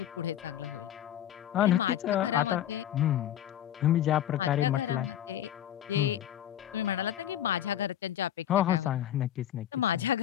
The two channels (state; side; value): quieter; right; 11.4 dB